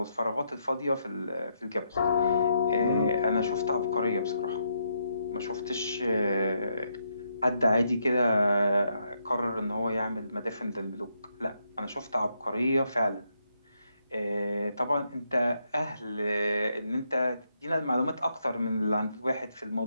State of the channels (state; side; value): inverted; both; correlation -0.78